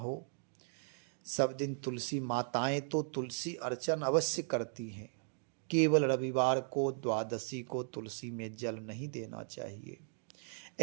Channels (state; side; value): silent; left; digital silence